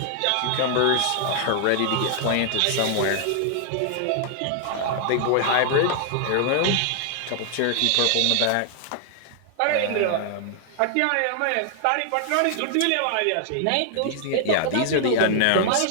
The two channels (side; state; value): both; different; correlation 0.00